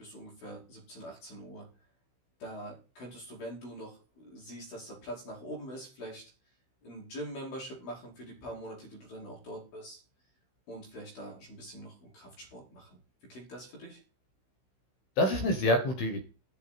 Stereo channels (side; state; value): right; late; 16 ms